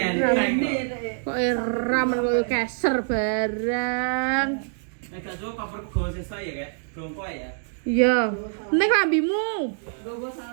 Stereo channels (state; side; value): silent; left; digital silence